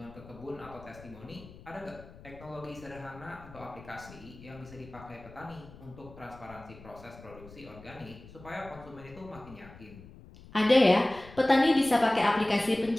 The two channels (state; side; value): noise; left; rumble, 19 dB below the sound